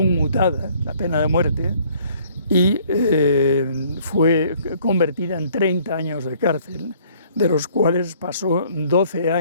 la pena de muerte, y fue convertida en 30 años de cárcel, de los cuales pasó 12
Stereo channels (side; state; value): both; inverted; correlation -0.59